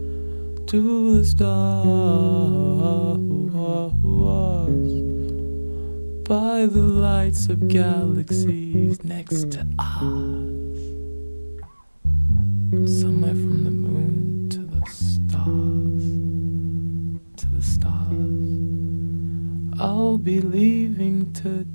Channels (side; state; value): both; inverted; correlation -1.00